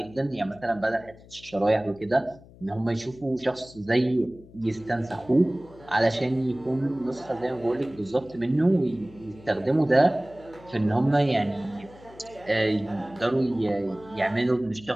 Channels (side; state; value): left; noise; hum, 22 dB below the sound